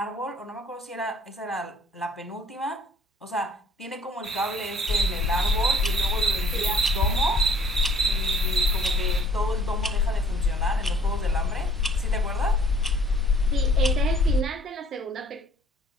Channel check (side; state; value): both; normal; correlation 0.56